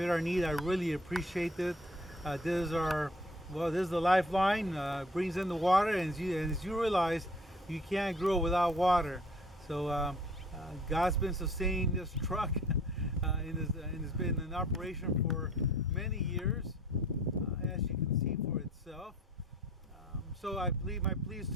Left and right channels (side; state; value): both; normal; correlation 0.53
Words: our need, I really appreciate it. This is the lifeline. Brings in the water, and as you realize, you can't grow without water. So God's been sustaining this truck, and it's been in operation for many years, as you can see for itself. So my plea is